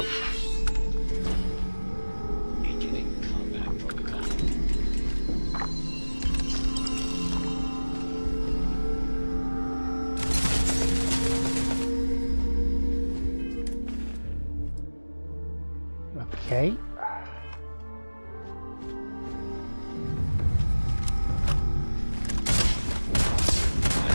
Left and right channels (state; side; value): inverted; both; correlation -1.00